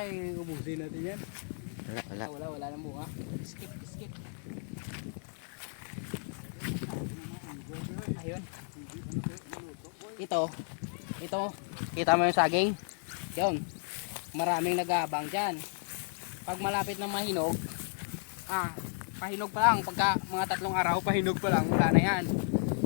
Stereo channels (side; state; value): right; silent; 55 dB below the other